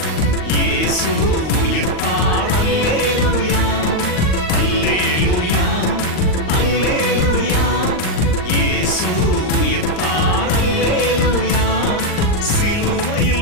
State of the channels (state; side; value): late; right; 39 ms